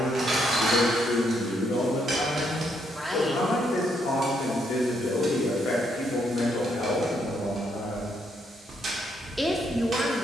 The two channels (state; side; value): normal; both; correlation 0.74